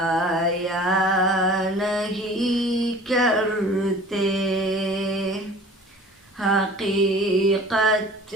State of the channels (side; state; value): both; normal; correlation 0.45